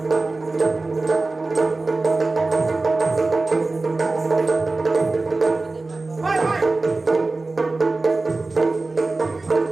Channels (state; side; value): quieter; left; 3.4 dB